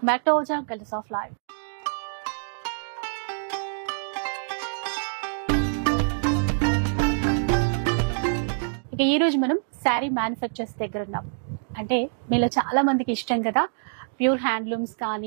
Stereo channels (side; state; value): left; silent; digital silence